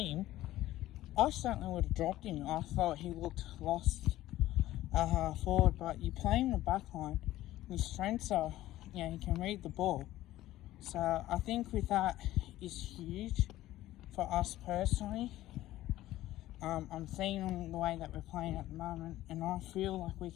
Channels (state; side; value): quieter; right; 15.2 dB